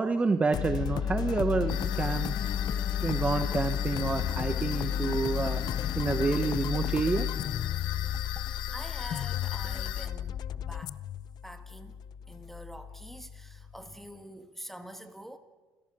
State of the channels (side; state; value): both; normal; correlation 0.71